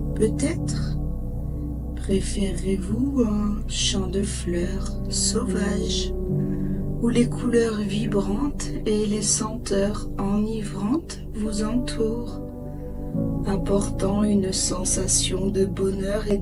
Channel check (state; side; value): identical; both; correlation 1.00